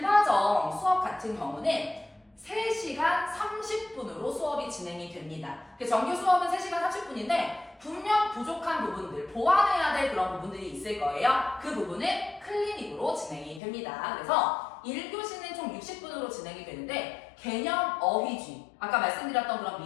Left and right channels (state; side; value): drops out; right; at 13.6 s